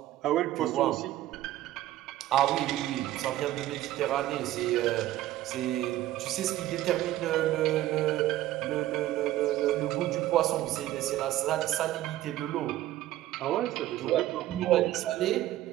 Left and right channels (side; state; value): left; quieter; 14.4 dB